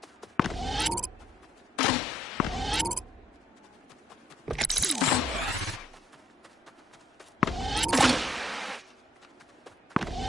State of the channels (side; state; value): both; normal; correlation 0.74